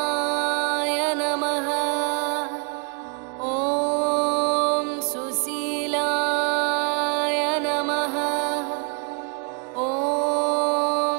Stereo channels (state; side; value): quieter; left; 38.0 dB